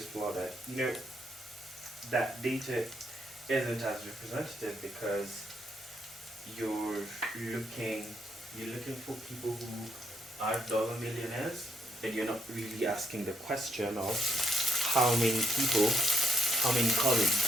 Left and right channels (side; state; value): both; normal; correlation 0.75